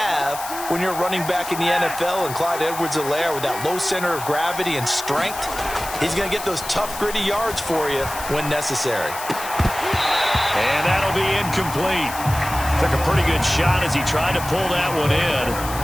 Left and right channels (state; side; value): noise; left; hiss, 10 dB below the sound